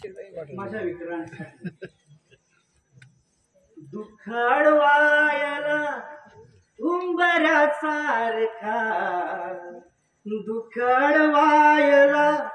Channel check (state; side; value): identical; both; correlation 1.00